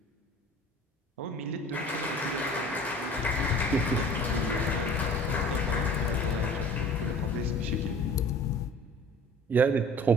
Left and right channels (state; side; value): normal; both; correlation 0.45